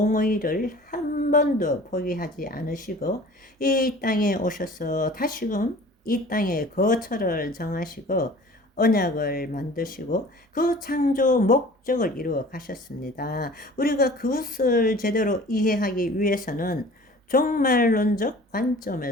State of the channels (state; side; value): normal; both; correlation 0.45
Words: 한 번도 포기하지 않으시고 이 땅에 오셔서 다시금 이 땅에 거처를 정하시고 언약을 만드시고 그 창조 목적을 이루어 가셨습니다. 우리가 그것을 제대로 이해하기 위해서는 종말론적